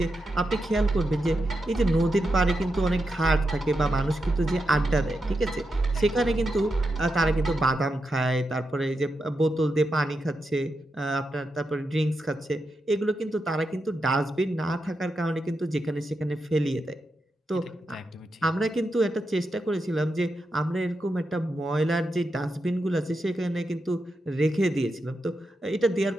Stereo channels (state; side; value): normal; both; correlation 0.86